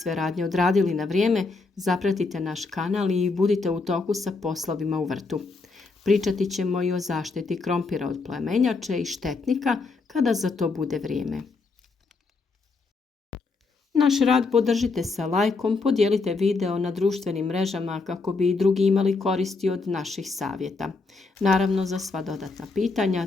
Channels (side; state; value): right; quieter; 4.0 dB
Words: radnje odradili na vrijeme, zapratite naš kanal i budite u toku sa poslovima u vrtu. Pričati ćemo i o zaštiti krompira od plemenjače i štetnika kada za to bude vrijeme. Naš rad podržite sa lajkom, podijelite video na društvenim mrežama kako bi i drugi imali koristi od naših savjeta. Naravno, za sva dodatna pitanja,